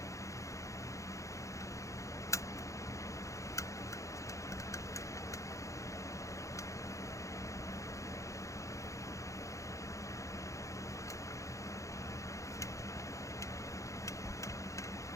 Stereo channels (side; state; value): right; late; 0.15 ms